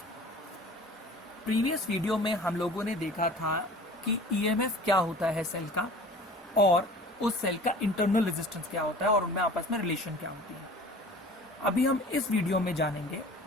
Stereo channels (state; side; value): normal; both; correlation 0.44